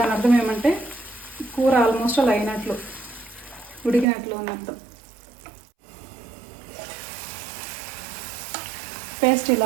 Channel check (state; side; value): drops out; left; at 4.0 s